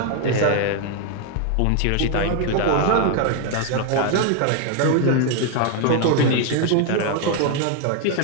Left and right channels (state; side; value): different; both; correlation 0.01